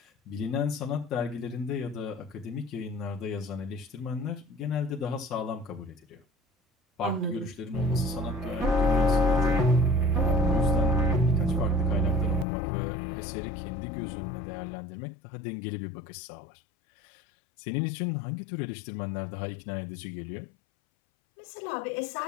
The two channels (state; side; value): drops out; right; at 12.5 s